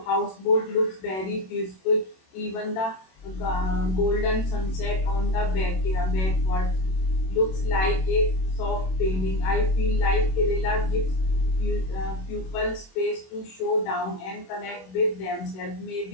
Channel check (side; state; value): right; late; 27 ms